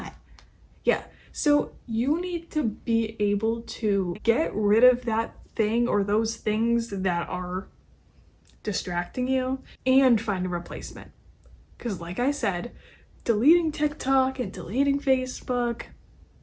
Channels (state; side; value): identical; both; correlation 1.00